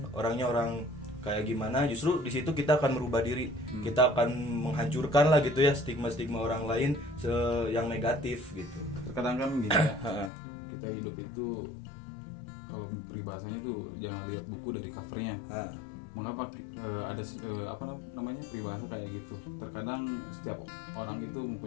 orangnya orang kayak gimana, justru di situ kita akan merubah diri. Kita akan menghancurkan lah gitu ya stigma-stigma orang lain yang negatif gitu. Terkadang kan gini ya, kita hidup itu kalau peribahasanya tuh jangan lihat buku dari covernya. Mengapa ada apa namanya peribahasa kayak gitu? Terkadang setiap orang itu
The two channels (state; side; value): drops out; right; at 10.3 s